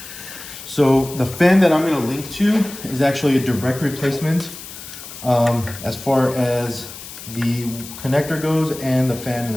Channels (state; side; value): noise; left; hiss, 13 dB below the sound